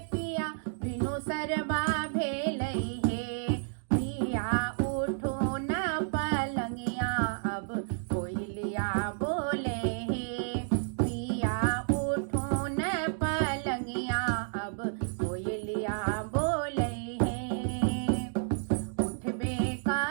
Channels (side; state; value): left; silent; digital silence